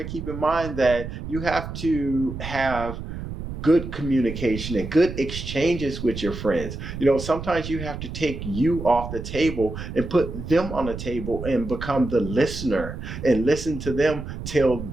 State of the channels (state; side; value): noise; right; rumble, 8 dB below the sound